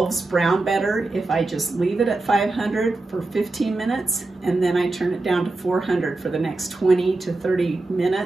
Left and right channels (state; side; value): quieter; left; 3.2 dB